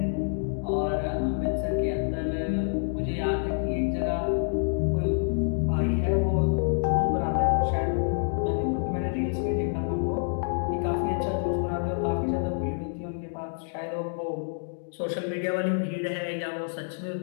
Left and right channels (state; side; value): silent; right; digital silence